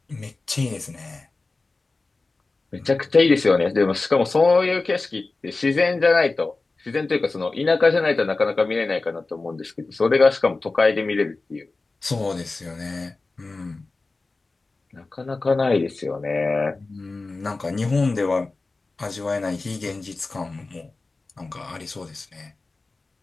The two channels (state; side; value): quieter; right; 3.5 dB